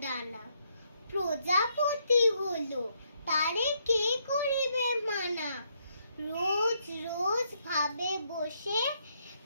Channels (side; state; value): both; inverted; correlation -0.75